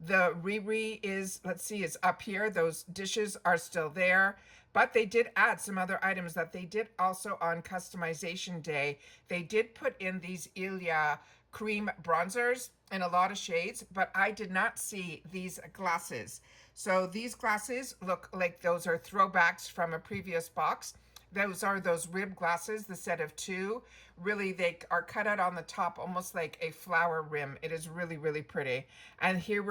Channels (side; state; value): both; identical; correlation 1.00